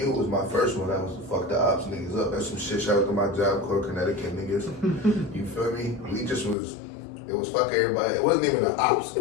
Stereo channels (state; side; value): drops out; right; at 6.6 s